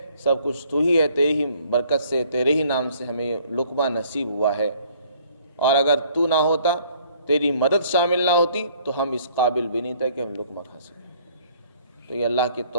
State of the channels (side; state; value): both; inverted; correlation -0.60